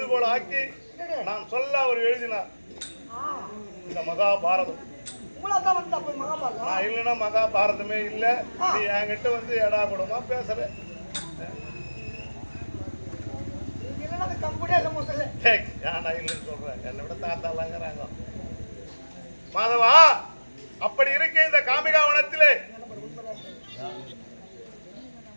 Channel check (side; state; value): both; inverted; correlation -1.00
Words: ஆக்கி நான் சொல்ல அவர் எழுதினார் இந்த மகாபாரதம். நான் இல்லைன்னா மகாபாரதமே இல்ல. நீ என்கிட்ட வந்து எடா கூடமா பேசுற. ஏன்டா இல்லைன்னு சொல்றேன்? என்னை விட தாத்தாலாங்கிறாங்க. மாதவா, அப்படி இருக்க இந்த காமிகாவனத்திலே